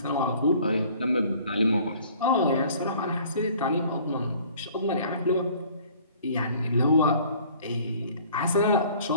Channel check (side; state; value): both; inverted; correlation -0.53